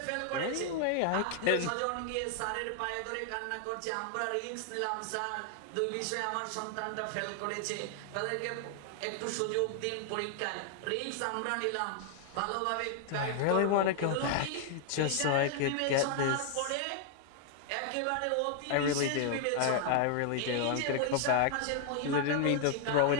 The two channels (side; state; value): both; different; correlation 0.00